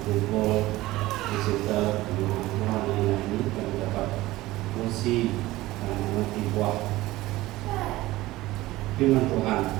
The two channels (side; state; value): left; quieter; 17.9 dB